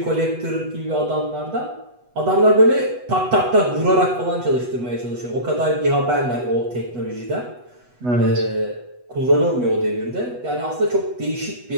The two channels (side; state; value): left; late; 8.1 ms